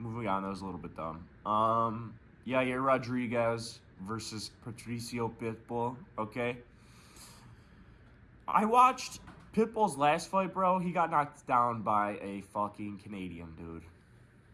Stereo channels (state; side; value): identical; both; correlation 1.00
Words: on, that was a little bit dumb. Yair Rodriguez versus Patricio Pitbull, okay? I watched Pitbull's last fight, bro. He got knocked down by a fucking Canadian, dude.